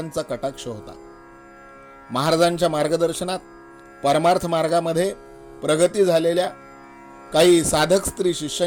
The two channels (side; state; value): both; identical; correlation 1.00